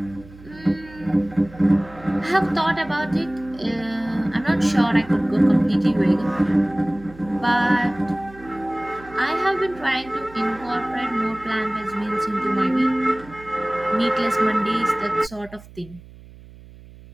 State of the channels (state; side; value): noise; right; hum, 20 dB below the sound